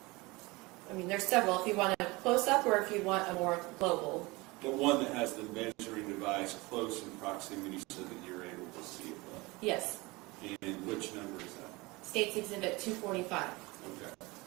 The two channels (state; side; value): quieter; left; 23.5 dB